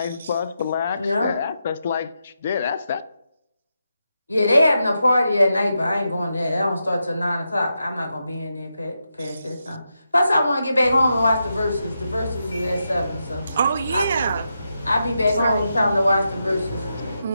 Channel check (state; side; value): inverted; both; correlation -0.86